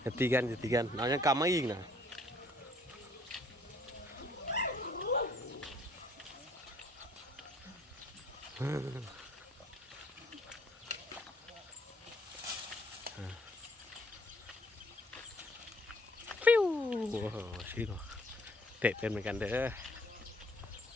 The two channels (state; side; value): normal; both; correlation 0.62